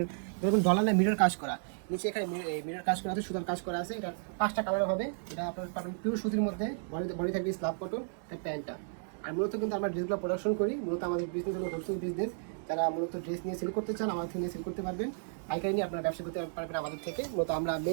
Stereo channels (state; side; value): silent; left; digital silence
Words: এরকম ডলার মিরর কাজ করা। নিচে এখানে মিরর কাজ করা আছে, সুতার কাজ করা আছে। এটা 5টা কালার হবে। এটা আপনার পাবেন পিওর সুতির মধ্যে, বডি থাকবে স্ল্যাব কটন, এটা প্যান্টটা। আর মূলত কিন্তু আমরা ড্রেসগুলো প্রোডাকশন করি। মূলত আমাদের বিজনেস হলো হোলসেল বিজনেস। যারা মূলত ড্রেস নিয়ে সেল করতে চান আমাদের থেকে সেল করতে পারবেন, পাইকারি নিয়ে আপনারা ব্যবসা করতে পারবেন আমাদের থেকে। মূলত আমরা